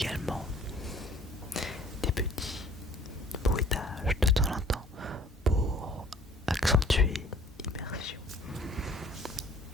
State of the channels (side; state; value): both; normal; correlation 0.54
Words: des petits bruitages de temps en temps pour accentuer l'immersion,